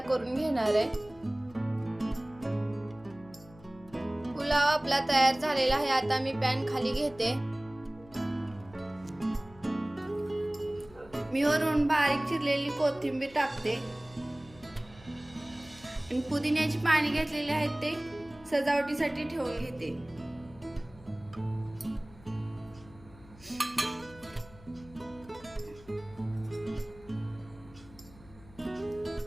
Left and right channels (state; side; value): noise; left; hum, 22 dB below the sound